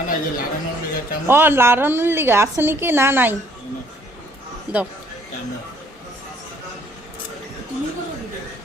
ও লাড়ানোর লিগা আছে নাকি? না নাই, দাও।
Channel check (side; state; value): both; normal; correlation 0.62